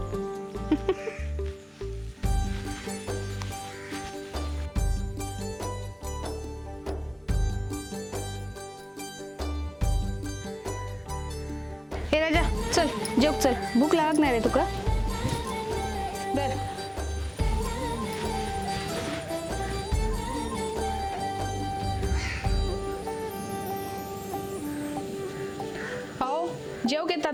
हे राजा चल जेव चल, भूक लागणार आहे तुका. बर हो जेव घेतात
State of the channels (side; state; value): both; identical; correlation 1.00